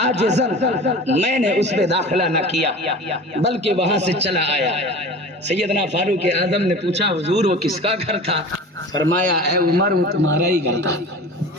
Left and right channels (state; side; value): normal; both; correlation 0.37